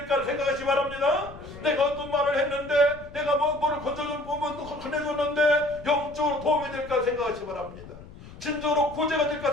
생각하시기 바랍니다. 내가 어떤 말을 했는데, 내가 뭐를 건네줬는데 영적으로 도움이 될까 생각하시기 바랍니다. 진정으로 구제가 될까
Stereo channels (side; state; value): left; noise; rumble, 17 dB below the sound